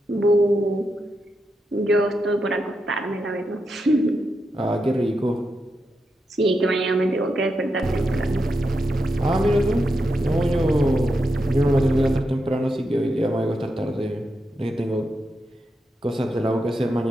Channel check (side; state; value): both; normal; correlation 0.86